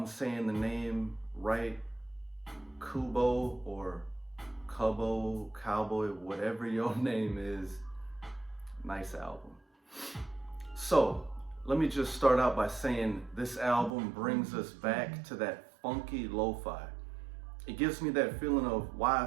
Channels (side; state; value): left; drops out; at 13.9 s